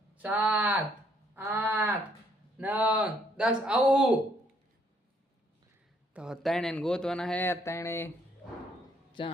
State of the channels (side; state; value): both; normal; correlation 0.68